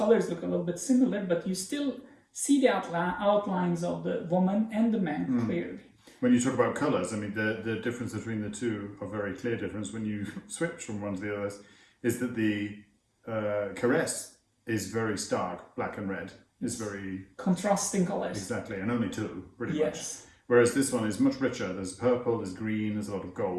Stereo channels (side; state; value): both; identical; correlation 1.00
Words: look a little bit similar, but you still see the outlines of the woman and the man clearly. When you talk about colours, I mean, the difference between the two, a very clear difference when you switch from one to the other, is that the Caress is very stark, black and red. It's very... contrasting colours. Exactly, and only two, pretty much. Whereas this one is much richer. There's purple, there's green, there's a lot of